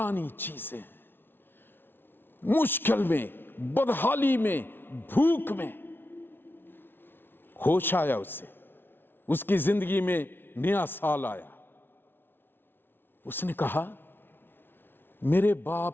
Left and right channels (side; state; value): right; late; 0.11 ms